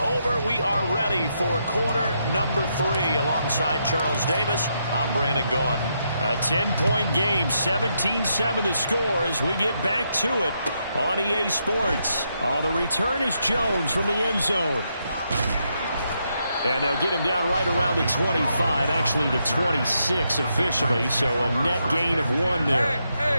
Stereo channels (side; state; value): both; inverted; correlation -0.80